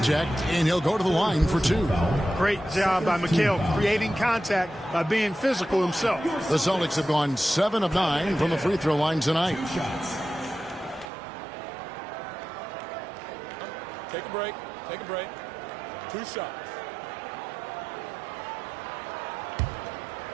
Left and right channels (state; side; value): drops out; left; at 11.1 s